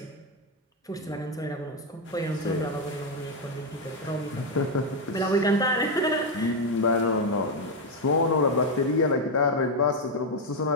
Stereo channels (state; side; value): normal; both; correlation 0.05